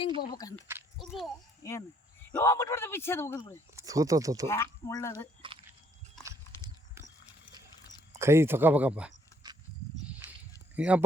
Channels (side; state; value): both; normal; correlation 0.66